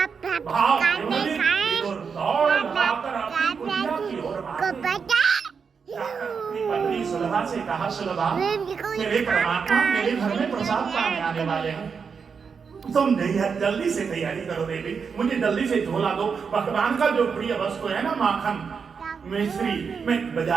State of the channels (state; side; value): quieter; left; 5.9 dB